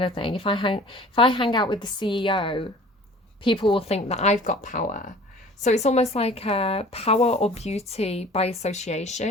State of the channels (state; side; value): normal; both; correlation 0.46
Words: of thing. If I hang out with the CEO, people will think that I've got power. So it's almost like power or beauty by